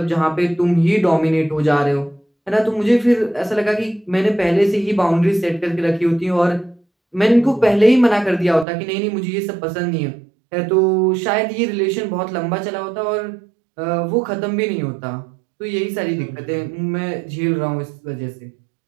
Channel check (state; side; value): drops out; left; at 8.7 s